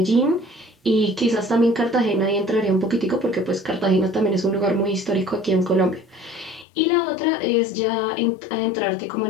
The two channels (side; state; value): right; drops out; at 6.7 s